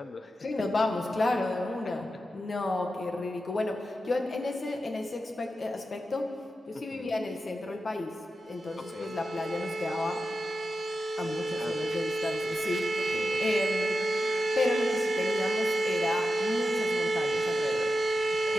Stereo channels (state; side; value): normal; both; correlation 0.91